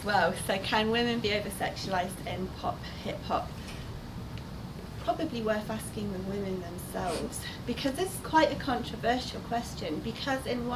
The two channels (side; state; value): both; identical; correlation 1.00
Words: well. So can women be over-sexualised in pop, hip-hop? Probably worth asking the women themselves, because this is quite a controversial question, because in